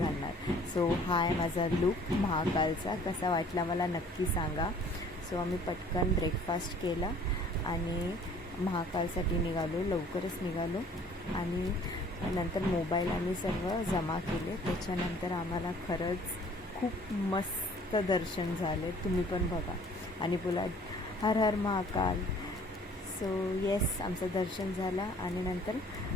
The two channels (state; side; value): normal; both; correlation 0.54